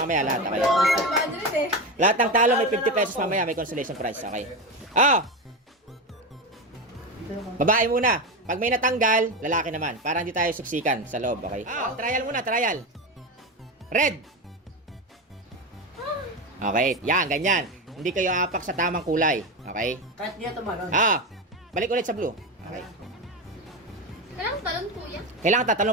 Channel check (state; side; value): normal; both; correlation 0.17